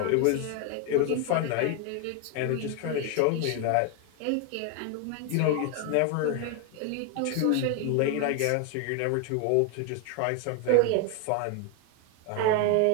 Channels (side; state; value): both; different; correlation 0.01